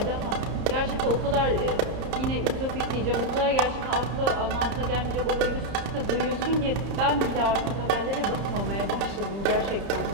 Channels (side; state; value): left; late; 31 ms